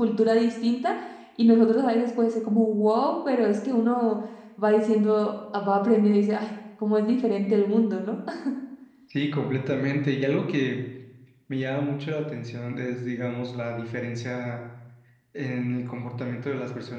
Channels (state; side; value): identical; both; correlation 1.00